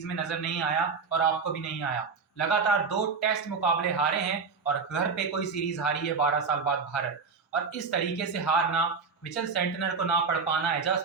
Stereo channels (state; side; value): quieter; left; 5.1 dB